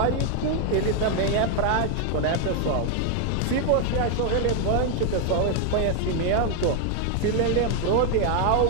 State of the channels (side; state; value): both; different; correlation 0.01